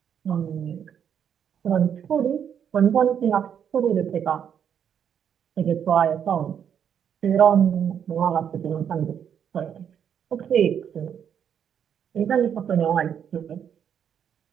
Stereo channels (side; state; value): left; quieter; 8.4 dB